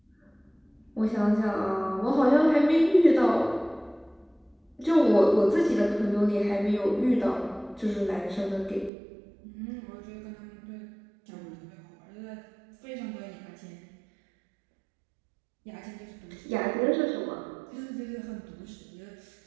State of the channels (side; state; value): left; drops out; at 8.9 s